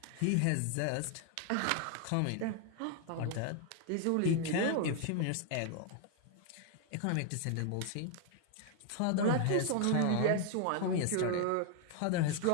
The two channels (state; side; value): different; both; correlation 0.00